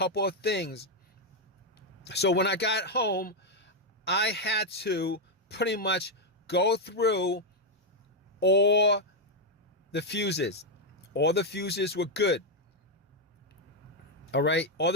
of things. So when I got home, I had to pretty much go through all the fuses. All the fuses were good. All right, all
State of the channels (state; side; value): normal; both; correlation 0.01